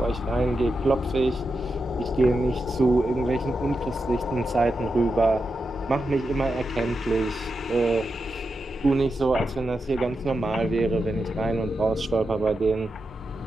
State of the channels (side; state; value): both; normal; correlation 0.88